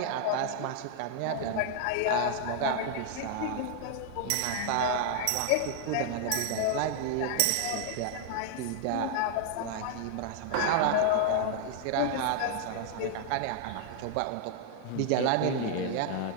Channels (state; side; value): different; both; correlation 0.00